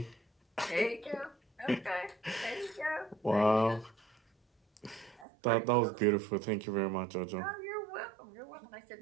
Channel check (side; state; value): left; drops out; at 5.2 s